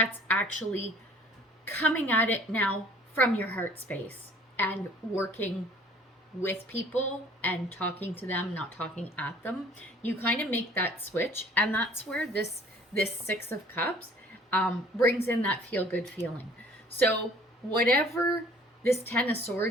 actually coming at it now from your heart space and working with people and talking to them, not talking at them. You kind of make that switch, and that's where this Six of Cups brings in that feel-good feeling. So whatever this Ten of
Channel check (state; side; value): normal; both; correlation 0.53